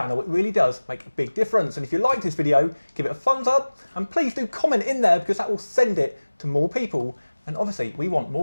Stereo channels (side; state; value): both; inverted; correlation -1.00